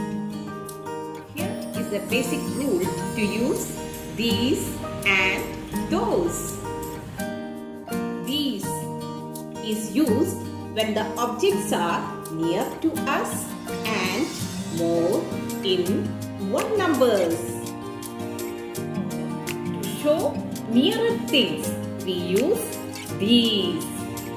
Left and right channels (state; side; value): identical; both; correlation 1.00